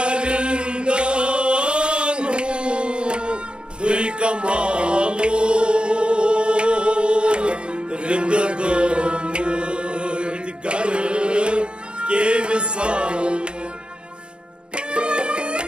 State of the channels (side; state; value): left; late; 0.053 ms